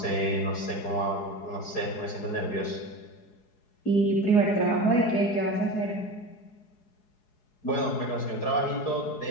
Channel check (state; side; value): late; right; 4.7 ms